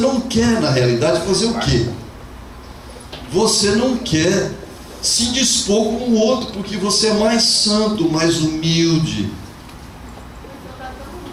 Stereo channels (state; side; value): identical; both; correlation 1.00